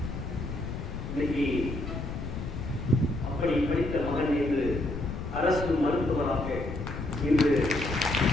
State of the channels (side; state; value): left; noise; rumble, 6 dB below the sound